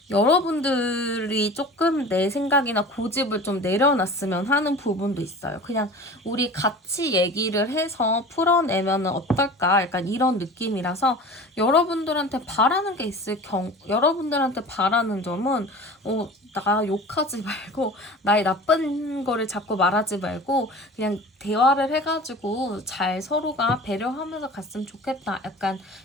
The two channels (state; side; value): normal; both; correlation 0.38